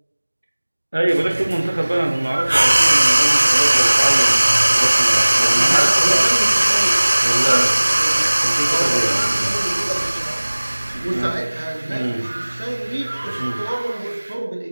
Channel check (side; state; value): both; inverted; correlation -1.00